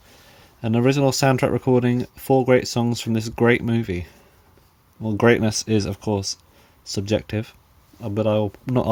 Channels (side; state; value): both; identical; correlation 1.00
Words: An original soundtrack recording, 4 great songs from this great movie. Well, greatness is, of course, subjective, but I will not